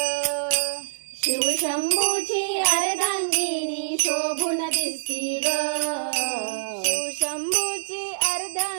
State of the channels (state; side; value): silent; left; 62 dB below the other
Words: शिवशंभूची अर्धांगिनी शोभून दिसती ग, शिवशंभूची